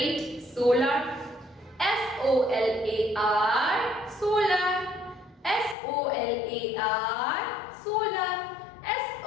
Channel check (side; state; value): right; drops out; at 5.8 s